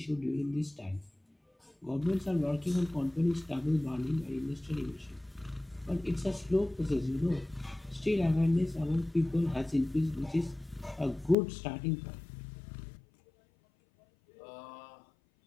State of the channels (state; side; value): drops out; right; at 11.4 s